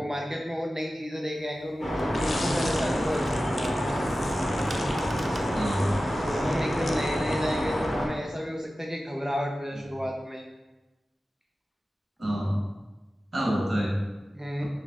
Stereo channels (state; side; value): normal; both; correlation 0.95